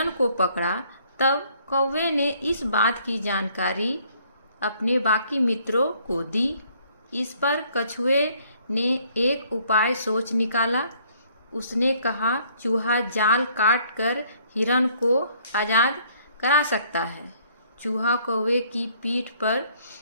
को पकड़ा तब कौवे ने इस बात की जानकारी अपने बाकी मित्रों को दी। इस पर कछुए ने एक उपाय सोच निकाला। उसने कहा, चूहा जाल काट कर हिरण को आजाद करा सकता है। चूहा कौवे की पीठ पर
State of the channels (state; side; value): inverted; both; correlation -0.63